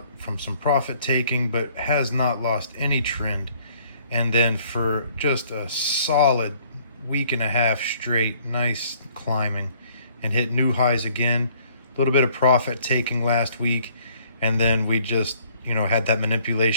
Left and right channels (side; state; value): both; inverted; correlation -0.61